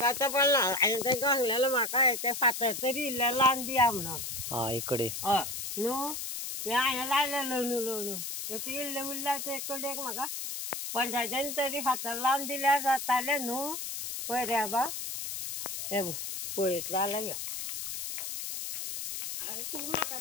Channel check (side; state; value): left; noise; hiss, 5 dB below the sound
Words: आतां पडना. हांवें तांकां सांगलेलें म्हाका ते फातर तरी इल्लें लावन दिया म्हणून. इकडे हय न्हू हे हांवें लायलेलो न्हू तशें इल्लें उरल्यार ते कडेक म्हाका पंचायतीन तरी फातर लावन दिल्यार जातालें न्हू. पळय रे बाबा हे पळयतलो जाल्यार यो. आरे तूं म्हाका